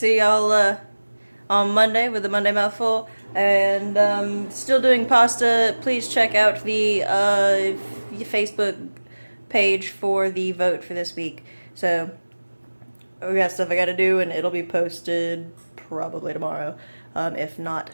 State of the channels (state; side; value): inverted; both; correlation -1.00